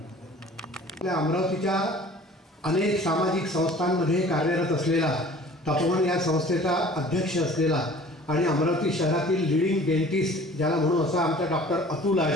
अमरावतीच्या अनेक सामाजिक संस्थांमध्ये कार्यरत असलेला, तपोवन या संस्थेचा अध्यक्ष असलेला आणि अमरावती शहरातील लीडिंग डेंटिस्ट ज्याला म्हणून असा आमचा डॉक्टर अतुल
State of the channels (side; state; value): both; normal; correlation 0.47